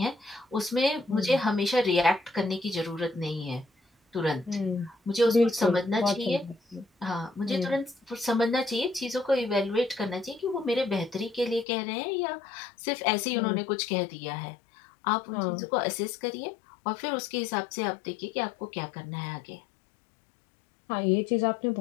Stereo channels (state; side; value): drops out; right; at 11.7 s